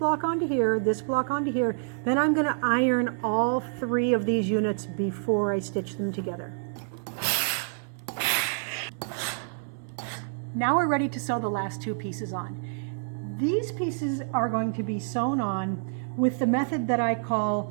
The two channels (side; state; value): left; silent; digital silence